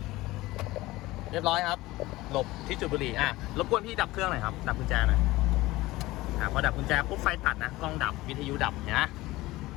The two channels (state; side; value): quieter; right; 18.8 dB